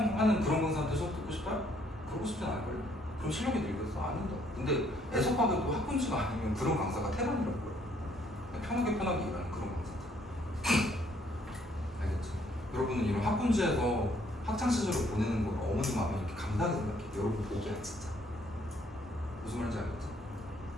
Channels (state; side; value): normal; both; correlation 0.66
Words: 그런 강사한테 수업 듣고 싶어요? 그러고 싶진 않을걸. 그럼 실력이 늘겠어? 아닌다. 근데 애석하게도 학군지가 아니면 그런 강사가 태반이라고요. 편하게 일하는 그런 강사. 알겠죠? 여러분은 이런 학군지에서 학창 시절을 보내는 걸 어머니 마음에 이렇게 감사하게 생각해. 여러분 보기야 진짜. 무슨 말인지 알겠죠?